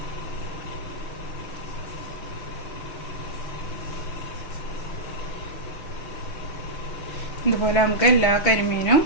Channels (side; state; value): right; late; 6.0 ms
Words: ഇതുപോലെ നമുക്ക് എല്ലാ കരിമീനും